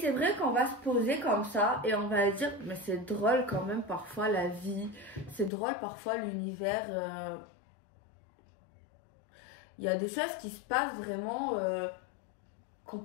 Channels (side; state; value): right; drops out; at 5.5 s